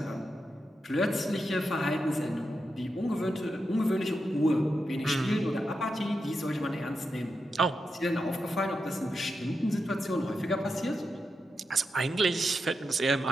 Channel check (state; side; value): normal; both; correlation 0.87